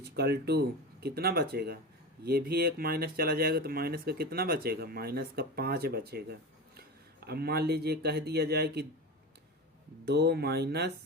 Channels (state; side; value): normal; both; correlation 0.26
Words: कितना बचेगा, ये भी एक माइनस चला जाएगा, तो माइनस का कितना बचेगा, -5 बचेगा। अब मान लीजिए कह दिया जाए कि 2 -